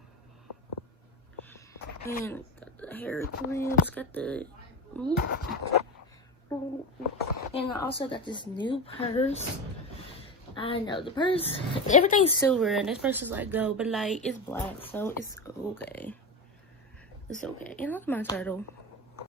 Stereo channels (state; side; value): normal; both; correlation 0.21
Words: And got the hair clips, got the... And I also got this new purse. I know the purse, everything's silver and this purse is like gold, but like it's black, so it's okay. It's okay. And look at my turtle.